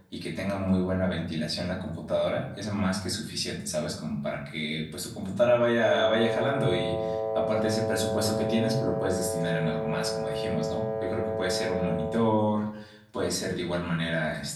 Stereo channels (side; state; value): both; identical; correlation 1.00